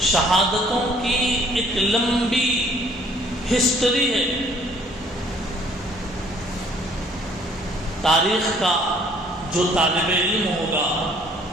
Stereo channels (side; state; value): both; normal; correlation 0.59